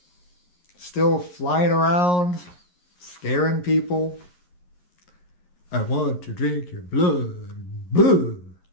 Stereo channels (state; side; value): late; right; 11 ms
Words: Still flying around, scaring people? I want to drink your blood. Boo!